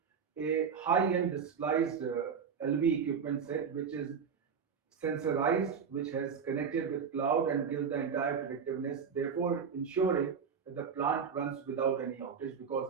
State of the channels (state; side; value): quieter; left; 6.5 dB